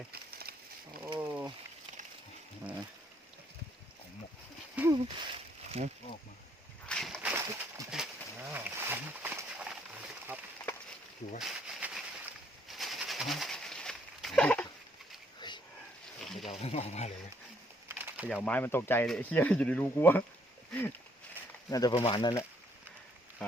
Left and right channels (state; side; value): normal; both; correlation 0.68